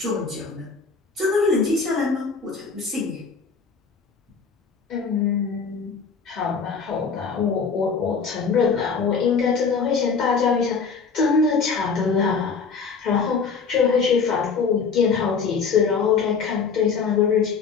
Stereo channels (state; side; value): quieter; right; 5.4 dB